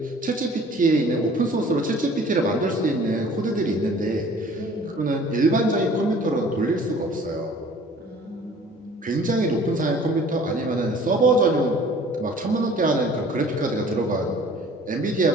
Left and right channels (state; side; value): normal; both; correlation 0.50